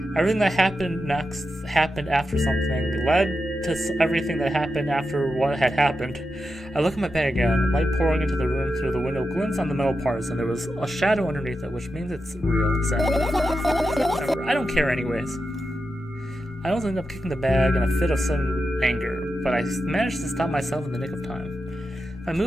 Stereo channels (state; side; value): normal; both; correlation 0.89